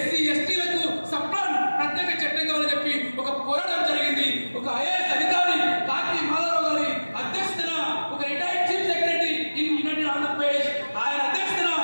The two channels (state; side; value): inverted; both; correlation -1.00